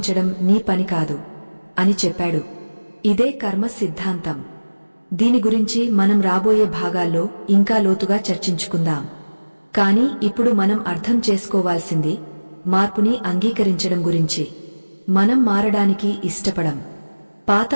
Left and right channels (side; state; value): both; inverted; correlation -1.00